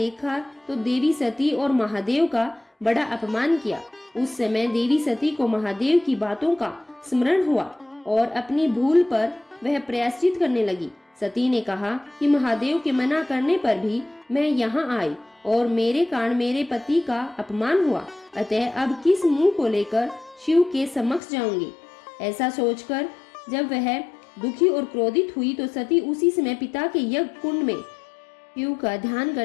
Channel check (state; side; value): drops out; right; at 21.2 s